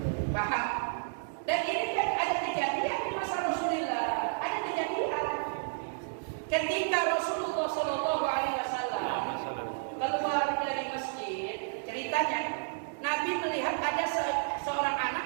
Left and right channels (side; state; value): left; silent; digital silence